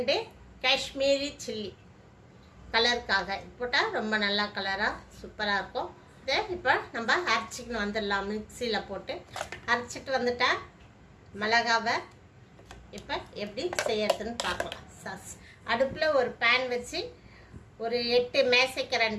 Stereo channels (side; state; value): both; identical; correlation 1.00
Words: காஷ்மீரி சில்லி கலருக்காக போட்டால் ரொம்ப நல்லா கலராக சூப்பராக இருக்கும். இதை இப்போ நம்ம அரைச்சிக்கணும் வந்துடலாம். மிக்சியில் போட்டு அரைச்சிட்டு வந்துட்டேன். மிளகாவை இப்போ எப்படி செய்யறதுன்னு பார்க்கலாம். சாஸ் அடுப்பில் ஒரு பேன் வச்சு ஒரு 8